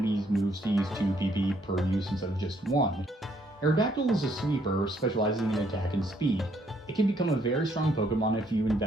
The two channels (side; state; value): both; normal; correlation 0.68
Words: moves to use 2 PP per use instead of just 1. Aerodactyl is a sweeper, specializing in attack and speed. It can become a very strong Pokemon if you